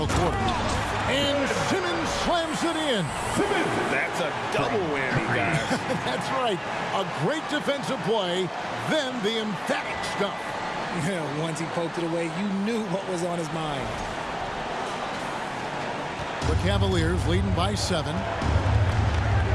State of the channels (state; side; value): identical; both; correlation 1.00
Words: quarter. And Simmons slams it in. That's a double whammy, guys. That's right. A great defensive play, then the emphatic stuff. Yeah, once he poked it away, you knew what was on his mind. The Cavaliers leading by 7.